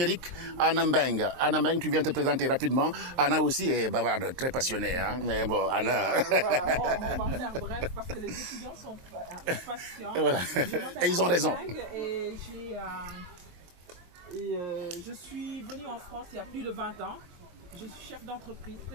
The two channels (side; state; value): left; late; 23 ms